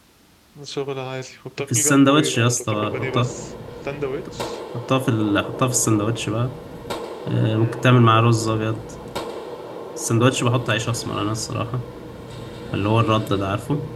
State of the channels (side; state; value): both; identical; correlation 1.00